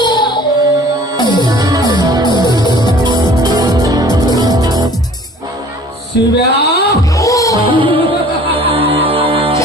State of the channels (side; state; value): both; normal; correlation 0.49